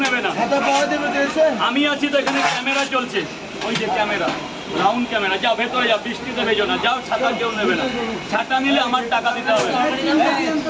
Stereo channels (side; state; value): both; identical; correlation 1.00